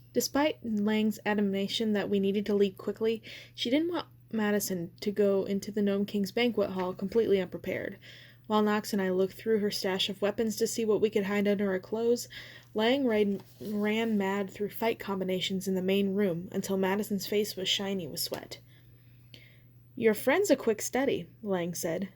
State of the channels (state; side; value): identical; both; correlation 1.00